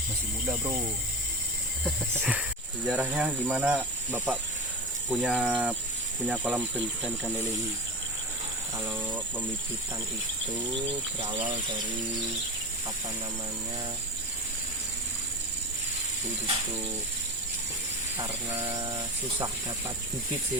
Masih muda, bro. Sejarahnya gimana Bapak punya kolam pembibitan ikan lele ini? Kalau pembibitan itu berawal dari itu karena susah dapat bibit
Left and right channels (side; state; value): both; normal; correlation 0.25